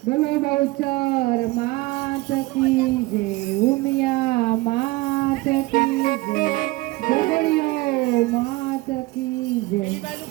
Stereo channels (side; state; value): left; quieter; 21.3 dB